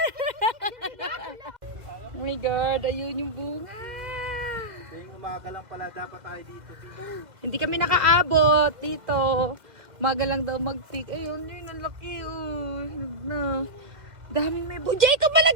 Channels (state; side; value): late; left; 2.0 ms